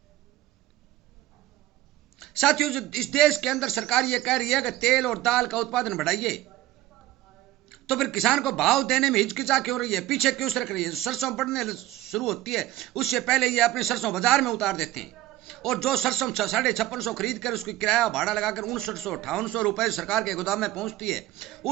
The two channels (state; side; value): quieter; left; 15.4 dB